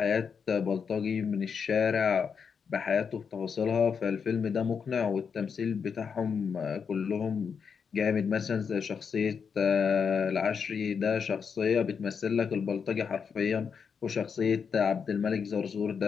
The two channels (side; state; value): right; quieter; 6.3 dB